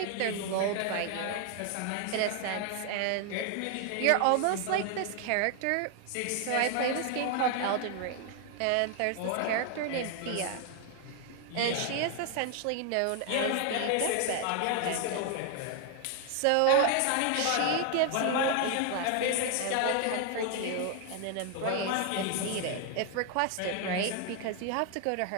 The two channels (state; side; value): different; both; correlation 0.00